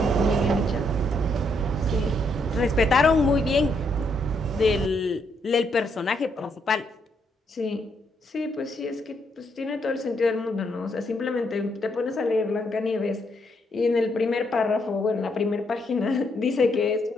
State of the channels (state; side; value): normal; both; correlation 0.75